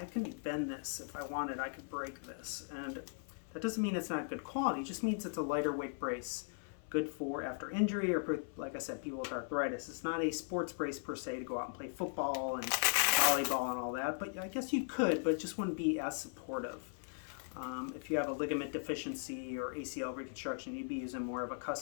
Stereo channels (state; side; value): silent; right; 52 dB below the other